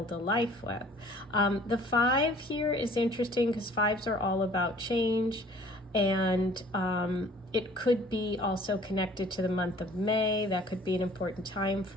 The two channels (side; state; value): both; normal; correlation 0.53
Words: a life with. The 5 here is interesting because 5s are all about change. And it could be also connected to the month of May. That could be an important time